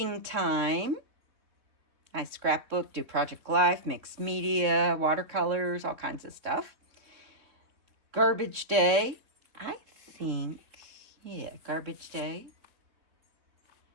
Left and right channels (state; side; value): late; left; 3.6 ms